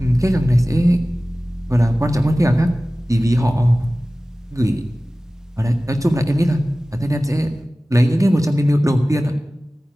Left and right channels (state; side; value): normal; both; correlation 0.97